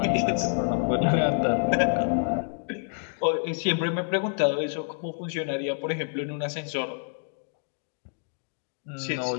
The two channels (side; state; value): right; silent; digital silence